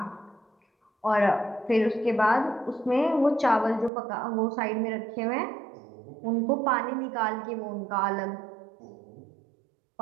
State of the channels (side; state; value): left; drops out; at 3.9 s